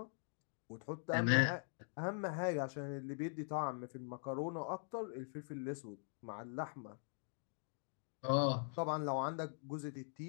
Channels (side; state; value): right; silent; digital silence